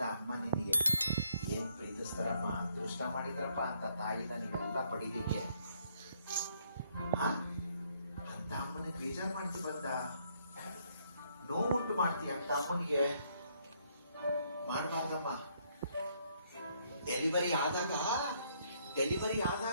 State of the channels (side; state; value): both; inverted; correlation -0.70